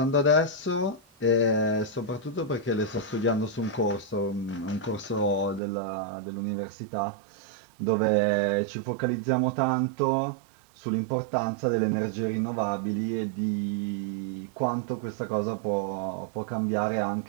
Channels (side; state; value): left; drops out; at 5.6 s